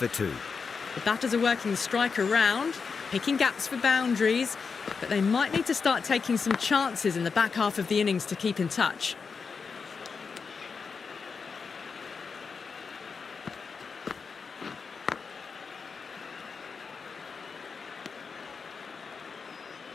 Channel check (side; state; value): right; quieter; 5.3 dB